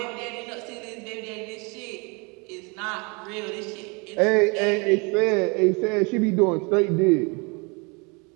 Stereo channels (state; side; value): quieter; left; 30.4 dB